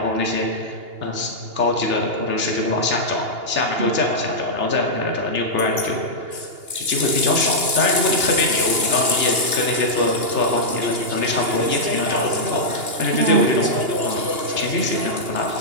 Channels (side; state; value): left; late; 2.8 ms